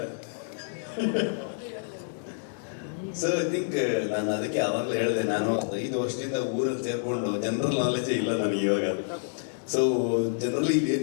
ಸೊ ಐ ಥಿಂಕ್ ನಾನು ಅದಕ್ಕೆ ಆವಾಗಲೇ ಹೇಳಿದೆ, ನಾನು 5 ವರ್ಷದಿಂದ ಊರಲ್ಲಿ ಸೇರ್ಕೊಂಡು ಜನರಲ್ ನಾಲೆಜೇ ಇಲ್ಲ ನನಗೆ ಇವಾಗ. ಸೊ ಜನರಲಿ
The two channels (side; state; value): right; silent; digital silence